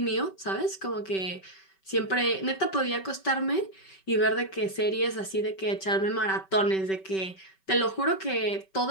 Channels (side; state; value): right; late; 5.2 ms